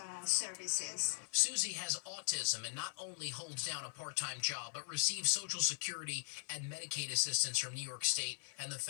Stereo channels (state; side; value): silent; right; 51 dB below the other